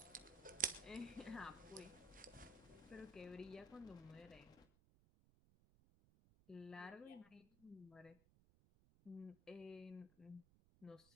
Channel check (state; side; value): noise; right; rumble, 24 dB below the sound